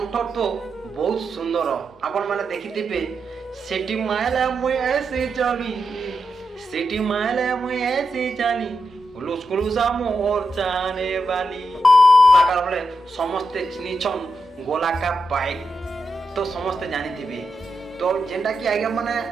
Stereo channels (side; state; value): both; normal; correlation 0.86